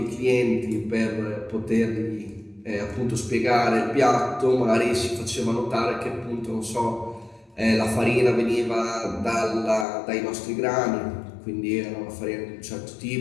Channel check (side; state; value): right; drops out; at 9.9 s